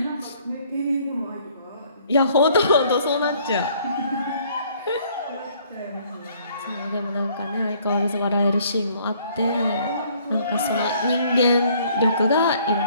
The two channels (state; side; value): inverted; both; correlation -0.61